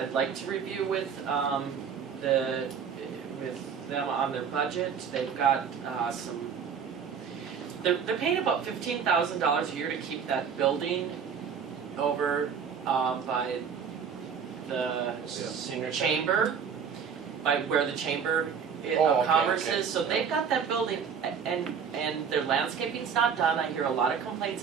I'd like to review with them on their budget. They've got they're paying about $15,000 a year to keep that building over by the Senior chamber, by where the chamber Oh, of commerce okay. is. So they've got that building, and their landscaping's not done. I hear a lot of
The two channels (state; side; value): quieter; left; 6.9 dB